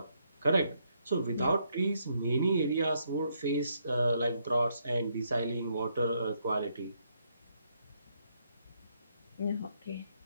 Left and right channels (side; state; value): both; inverted; correlation -0.75